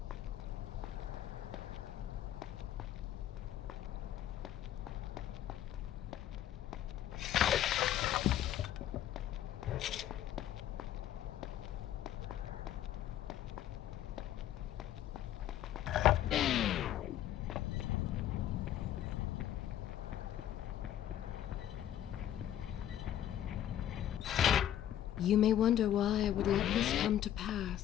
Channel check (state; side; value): quieter; right; 11.4 dB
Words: You may wonder why I would let this come to